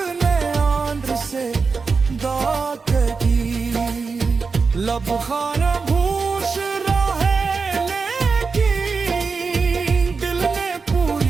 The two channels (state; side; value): quieter; left; 4.8 dB